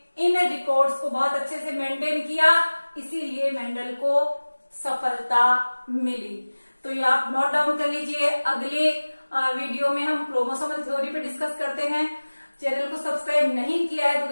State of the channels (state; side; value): inverted; both; correlation -1.00